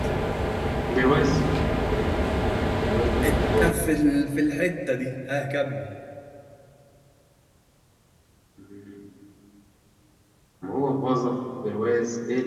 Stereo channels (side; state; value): both; identical; correlation 1.00